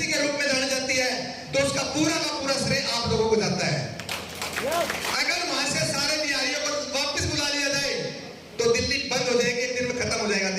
के रूप में जानी जाती है तो उसका पूरा का पूरा श्रेय आप लोगों को जाता है। अगर वहां से सारे बिहारियों को वापस बुला लिया जाए तो दिल्ली बंद हो जाएगी, एक दिन में खत्म हो जाएगा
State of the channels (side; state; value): both; identical; correlation 1.00